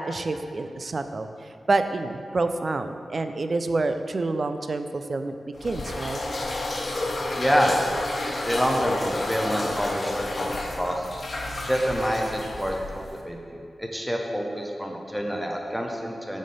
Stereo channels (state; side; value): normal; both; correlation 0.94